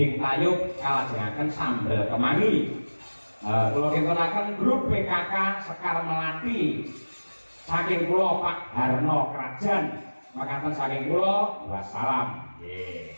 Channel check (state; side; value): inverted; both; correlation -1.00